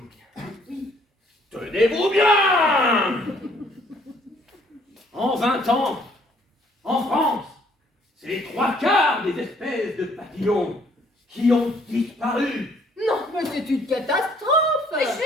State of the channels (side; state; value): both; normal; correlation 0.62